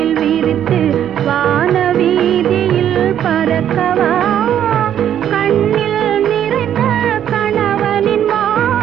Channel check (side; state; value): left; quieter; 10.1 dB